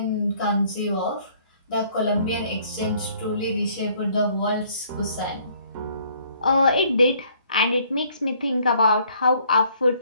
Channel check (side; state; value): both; inverted; correlation -0.62